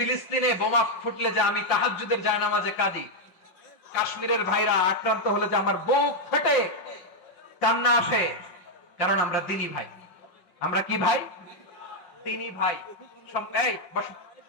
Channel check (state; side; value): late; right; 5.5 ms